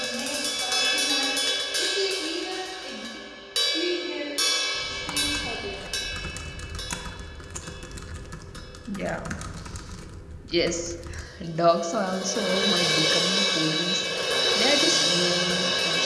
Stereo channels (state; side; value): identical; both; correlation 1.00